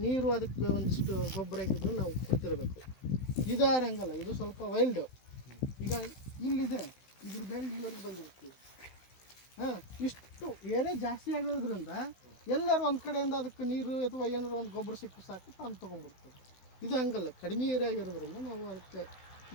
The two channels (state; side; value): late; right; 16 ms